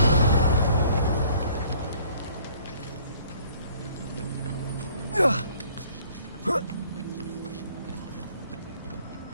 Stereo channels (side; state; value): both; inverted; correlation -0.57